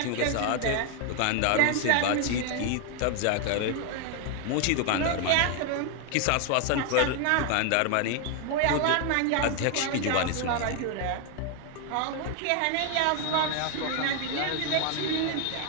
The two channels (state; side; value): different; both; correlation 0.00